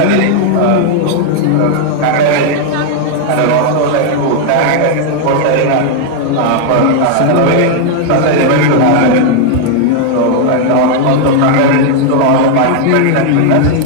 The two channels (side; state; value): both; different; correlation 0.00